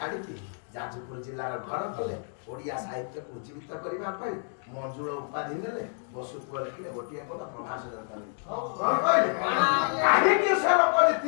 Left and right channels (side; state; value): right; silent; 59 dB below the other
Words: ଯାଜପୁର ଜିଲ୍ଲାର ଘର କଲେ ଓଡ଼ିଆ ସାହିତ୍ୟକୁ ଉଜ୍ଜୀବିତ କରିବା ପାଇଁ ମଞ୍ଜୁଳ ଉପାଧି ନେଲେ ବସୁ ପୁଅ ଲେଖିଲେ ଗୋଟିଏ ପଦ ପ୍ରଭାସ ଦରକାର କଣ କହିଲେ କାହିଁକି ସେ ଲୋକ